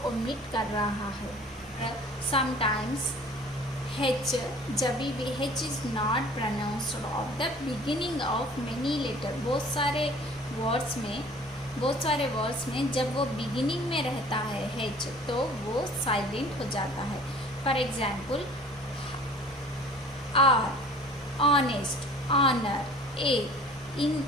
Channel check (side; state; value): both; normal; correlation 0.48